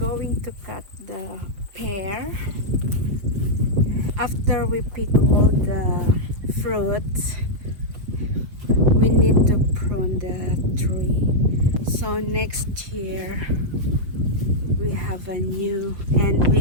to cut the pear. After we pick all the fruits, we need to prune the tree. So next year, we have a new and we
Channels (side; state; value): left; late; 5.8 ms